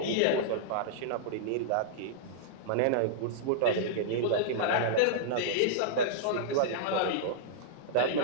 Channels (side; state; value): both; different; correlation -0.02